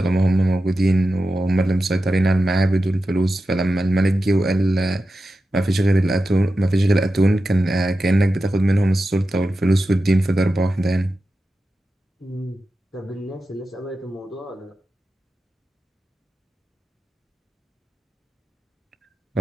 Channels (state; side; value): normal; both; correlation 0.91